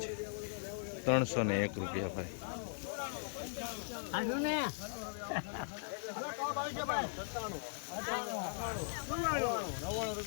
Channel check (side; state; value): right; silent; digital silence